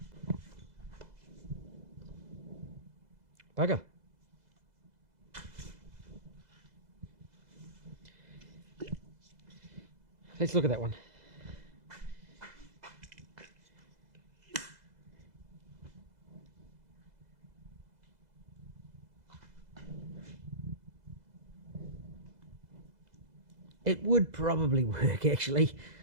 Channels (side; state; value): left; late; 2.0 ms